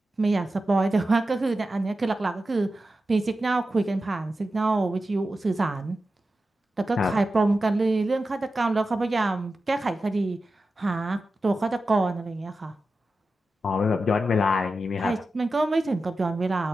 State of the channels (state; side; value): normal; both; correlation 0.92